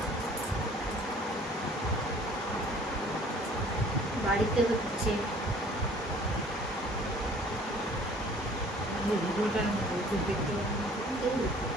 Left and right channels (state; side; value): normal; both; correlation 0.53